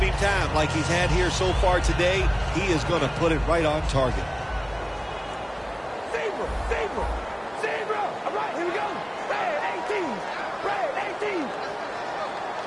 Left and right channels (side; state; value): both; identical; correlation 1.00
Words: time like he's had here so far today, he is going to put it right on target. Zebra, zebra, zebra. All right, here we go. Red 18, red 18.